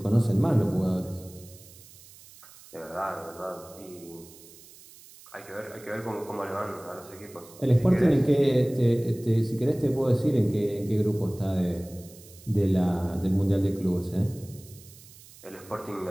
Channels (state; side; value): noise; right; hiss, 21 dB below the sound